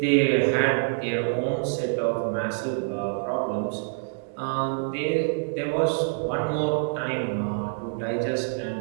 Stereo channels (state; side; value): silent; left; digital silence